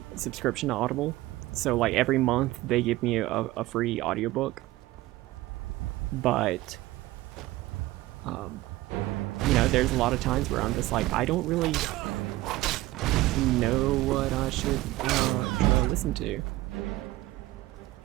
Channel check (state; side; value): quieter; left; 17.8 dB